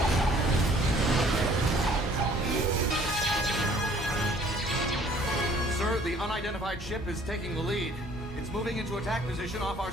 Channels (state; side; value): normal; both; correlation 0.56